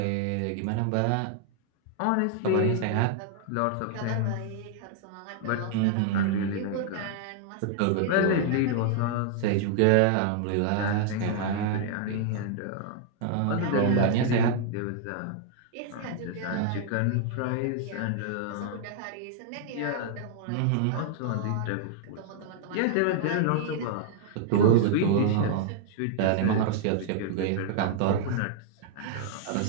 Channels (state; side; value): different; both; correlation -0.01